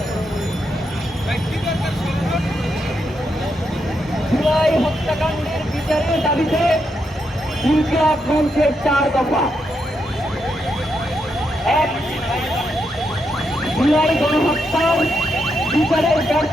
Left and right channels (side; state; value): both; normal; correlation 0.82